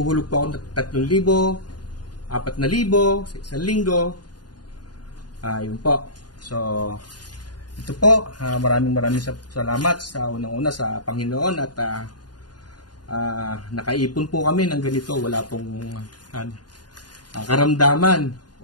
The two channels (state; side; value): late; right; 0.70 ms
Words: po ako ng 3,000, 4,000 sa isang linggo. Yun po. So, ito po, maraming salamat sa unang-una sa Panginoon at nakaipon po kami ng ganito. Wala pong karamdaman